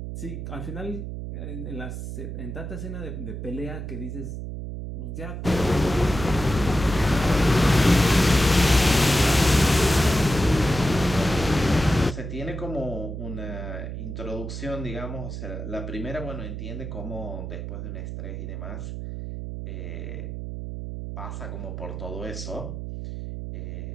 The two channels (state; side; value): noise; right; hum, 6 dB below the sound